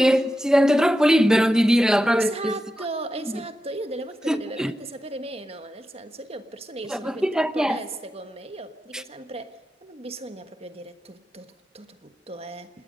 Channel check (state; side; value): normal; both; correlation 0.90